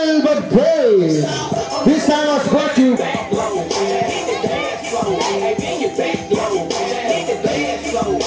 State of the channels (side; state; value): both; identical; correlation 1.00